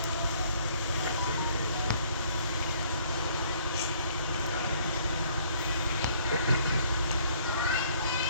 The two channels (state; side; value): inverted; both; correlation -0.62